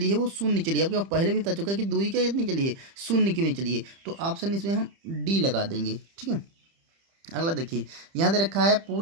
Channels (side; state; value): left; late; 30 ms